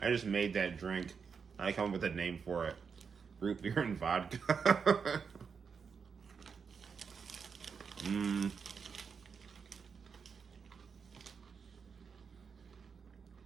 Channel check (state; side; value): quieter; left; 5.9 dB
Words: I just made that drink. I come up with a name for it. Root beer and vodka.